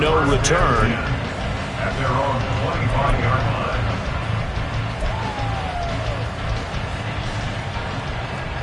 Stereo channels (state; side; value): identical; both; correlation 1.00